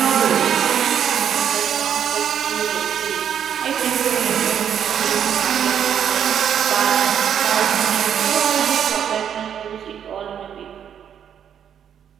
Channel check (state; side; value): quieter; left; 8.7 dB